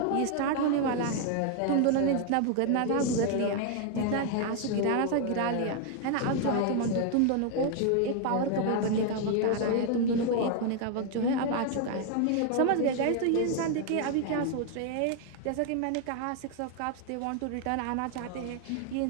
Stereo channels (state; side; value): different; both; correlation 0.00